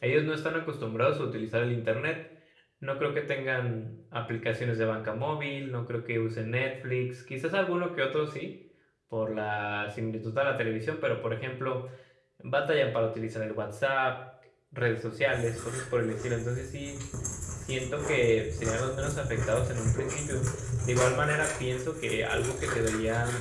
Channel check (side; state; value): both; identical; correlation 1.00